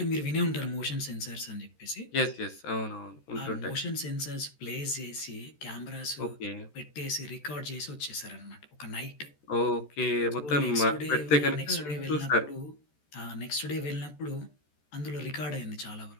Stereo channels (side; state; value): right; late; 14 ms